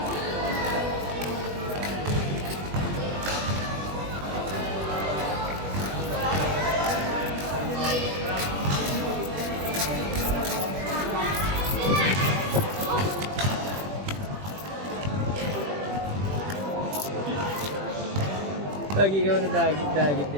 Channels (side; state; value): left; late; 20 ms